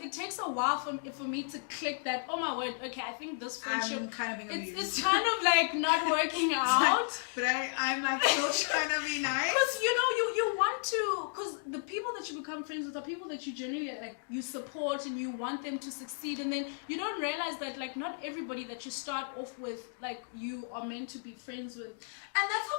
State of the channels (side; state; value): right; silent; digital silence